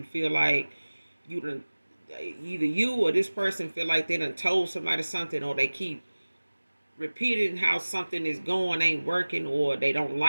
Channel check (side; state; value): both; inverted; correlation -1.00